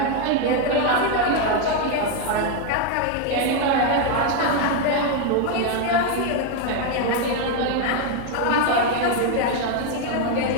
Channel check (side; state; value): both; different; correlation 0.01